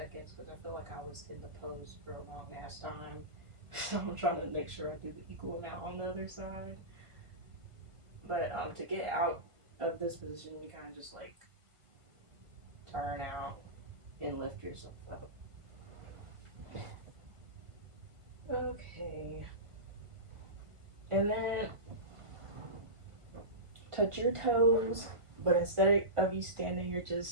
because I feel like I was in the pose for a long ass time. So I'm trying to make sure I do the equal amount on the other side. But to get out of this position, you kind of just like turn out and lift yourself up. Okay. And then touch your toes, but instead of you standing, you're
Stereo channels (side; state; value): left; late; 1.5 ms